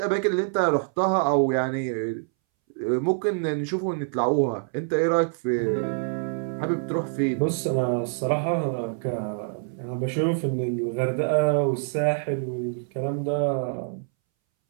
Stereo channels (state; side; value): silent; left; 61 dB below the other